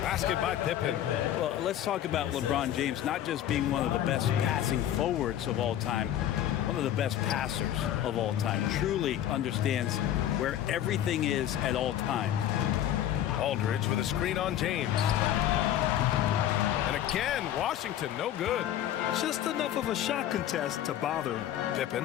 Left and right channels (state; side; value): quieter; right; 11.5 dB